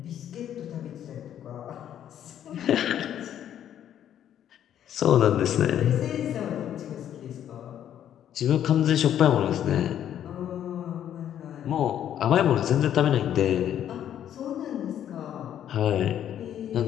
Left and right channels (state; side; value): quieter; right; 10.4 dB